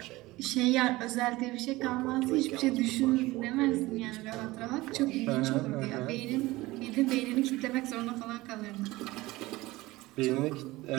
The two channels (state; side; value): quieter; left; 19.6 dB